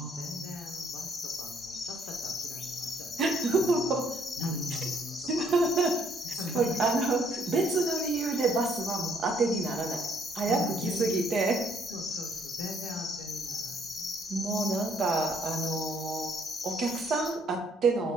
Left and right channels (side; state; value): both; normal; correlation 0.67